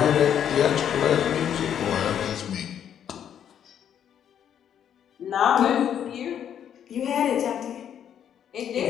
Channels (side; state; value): right; quieter; 9.3 dB